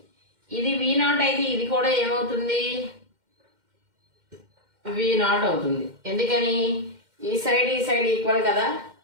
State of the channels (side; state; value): left; late; 2.1 ms